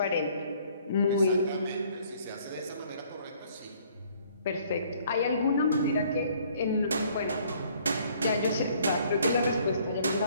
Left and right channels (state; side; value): inverted; both; correlation -0.61